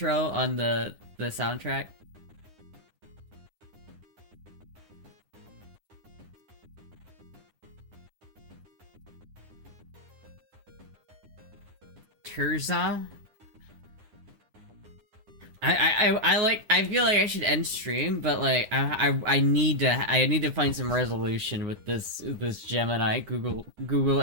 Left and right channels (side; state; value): left; late; 9.9 ms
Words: on the soundtrack. Terza? I feel like I should end stream, but like I need to find some resolution with this Gemini Google